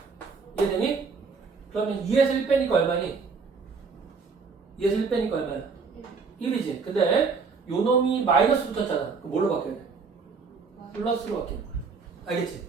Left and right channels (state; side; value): quieter; left; 4.9 dB